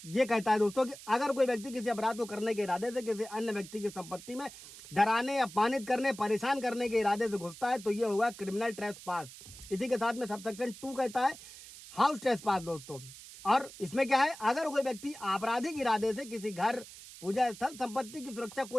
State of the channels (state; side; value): noise; right; hiss, 16 dB below the sound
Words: ये कहता है दोस्तों कि अगर कोई व्यक्ति किसी अपराध को करने के इरादे से किसी अन्य व्यक्ति की संपत्ति में डराने, अपमानित करने, परेशान करने के इरादे से घुसता है तो ये होगा क्रिमिनल ट्रेसपास। इसी के साथ में सबसेक्शन 2 कहता है हाउस ट्रेसपास दोस्तों। और इसमें क्या है, अगर कोई व्यक्ति आपराधिक इरादे से किसी घर, पूजा स्थल, संपत्ति की सुरक्षा